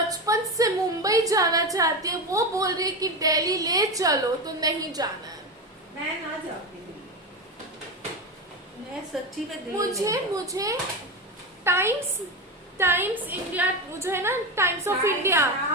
से मुंबई जाना चाहती है वो बोल रही है कि दिल्ली ले चलो, तो नहीं जाना है। मैं ना जाती दिल्ली, मैं सच्ची में दिल्ली मुझे नहीं जाऊँ। मुझे टाइम्स टाइम्स इंडिया जो है ना, times of India,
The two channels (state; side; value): normal; both; correlation 0.18